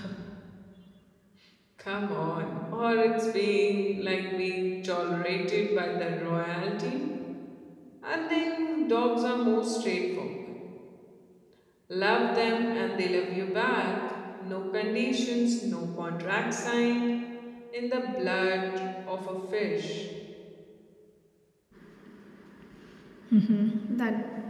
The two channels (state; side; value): identical; both; correlation 1.00